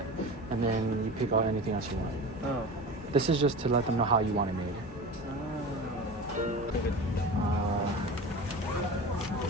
and then you pick out anything else you want. Oh. This is just to let them know how you want it made.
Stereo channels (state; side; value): normal; both; correlation 0.32